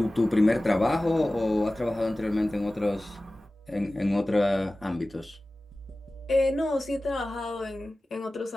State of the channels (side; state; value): both; normal; correlation 0.97